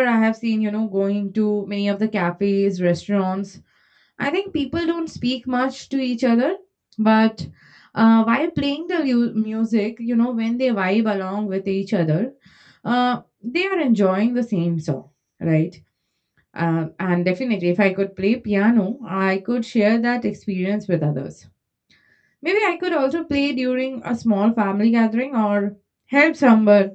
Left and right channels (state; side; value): identical; both; correlation 1.00